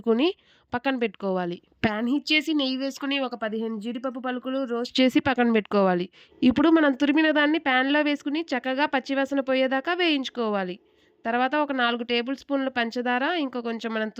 పక్కన పెట్టుకోవాలి. ప్యాన్ హీట్ చేసి నెయ్యి వేసుకుని ఒక 15 జీడిపప్పు పలుకులు రోస్ట్ చేసి పక్కన పెట్టుకోవాలి. ఇప్పుడు మనం తురిమిన దాన్ని ప్యాన్లో వేసుకుని చక్కగా పచ్చివాసన పోయేదాకా వేయించుకోవాలి. తర్వాత ఒక 4 టేబుల్ స్పూన్ల పంచదార, ఇంకా కొంచెం మనం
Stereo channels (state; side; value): identical; both; correlation 1.00